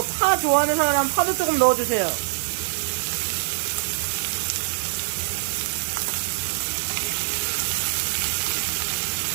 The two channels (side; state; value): left; silent; digital silence